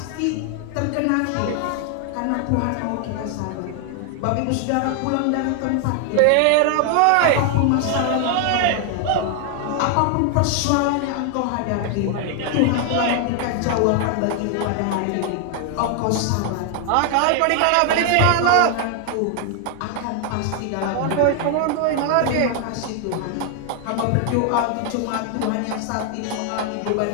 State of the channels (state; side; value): different; both; correlation 0.00